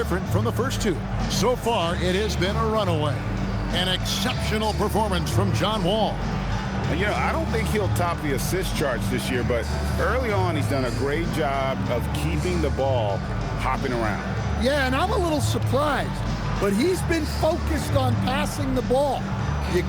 from the first 2. So far, it has been a runaway. An exceptional performance from John Wall. And, you know, I don't think he'll top the assist charts this year, but early on he's done a great job of keeping the ball hopping around. Yeah, and I'm a little surprised. but he's been focused on passing the ball. You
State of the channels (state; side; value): identical; both; correlation 1.00